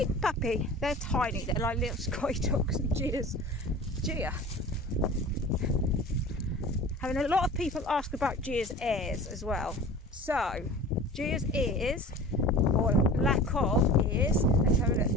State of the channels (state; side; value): normal; both; correlation 0.39